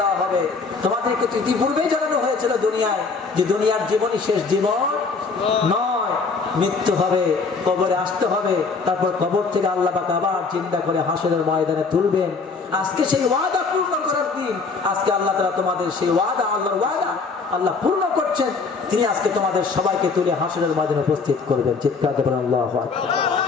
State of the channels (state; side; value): quieter; right; 4.6 dB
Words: দেওয়া হবে তোমাদেরকে ইতিপূর্বেই জানানো হয়েছিল দুনিয়ায় যে দুনিয়ার জীবনই শেষ জীবন নয়, মৃত্যু হবে, কবরে আসতে হবে, তারপর কবর থেকে আল্লাহ পাক আবার জিন্দা করে হাসরের ময়দানে তুলবেন। আজকে সেই ওয়াদা পূর্ণ করার দিন। আজকে আল্লাহ তাআলা তোমাদের সেই ওয়াদা, আল্লাহর ওয়াদা আল্লাহ পূর্ণ করছেন। তিনি আজকে তোমাদের সবাইকে তুলে হাসরের ময়দানে উপস্থিত করবেন। চিৎকার দেবেন আল্লাহু আকবার।